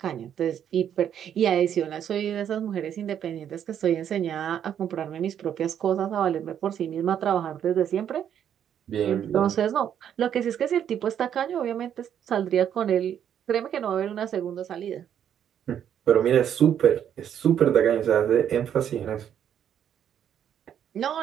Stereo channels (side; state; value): left; quieter; 9.4 dB